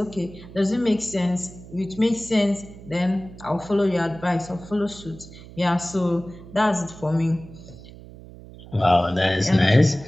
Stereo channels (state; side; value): noise; right; hum, 17 dB below the sound